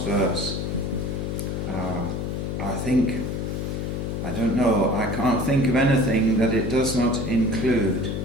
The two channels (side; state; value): left; noise; hum, 3 dB below the sound